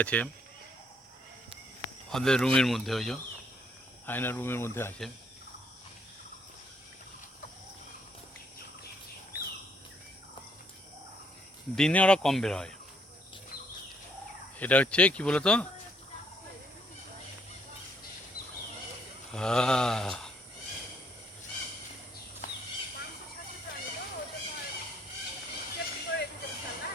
আছে, ওদের রুমের মধ্যে, ওই যে আয়না রুমের মধ্যে আছে। দিনে ওরা কম বের হয়। এটা হচ্ছে কি বলতো,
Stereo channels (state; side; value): normal; both; correlation 0.69